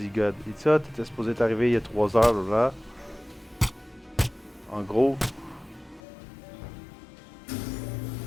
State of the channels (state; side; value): drops out; right; at 6.0 s